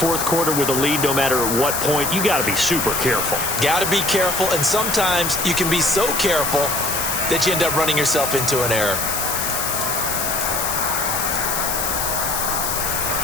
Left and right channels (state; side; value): noise; left; hiss, 1 dB below the sound